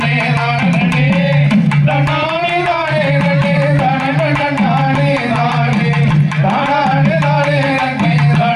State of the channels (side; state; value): both; identical; correlation 1.00